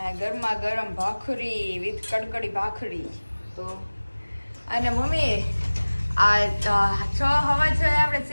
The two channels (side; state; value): both; inverted; correlation -1.00